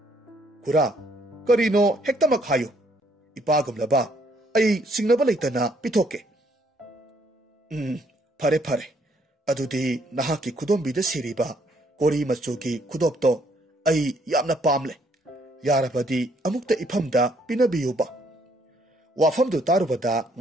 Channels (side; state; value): both; normal; correlation 0.68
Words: khura karino hektamak hayo ipagumlaba ai singnaba leitana pithoke phare phare adudi nahaki khudombida siriba kori machugi khudopto ai yamna pamle yarabadi amukta ifamda pinabiyuba wafamdu tarubada